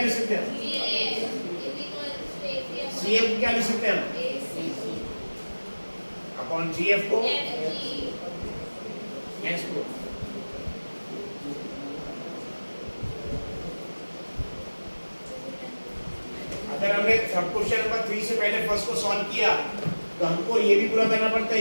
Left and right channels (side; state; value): both; inverted; correlation -1.00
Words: सकते हैं? C GF को क्या लिख सकते हैं हम? अपॉन GF को S को। अगर हमने सब क्वेश्चन नंबर 3 से पहले फर्स्ट को सॉल्व किया तो हमको ये भी पूरा करना पड़ता